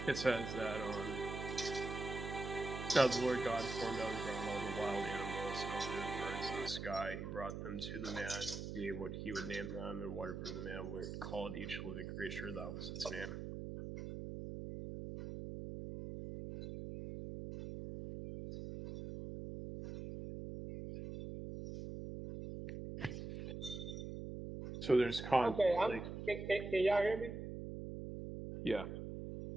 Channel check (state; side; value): noise; right; hum, 6 dB below the sound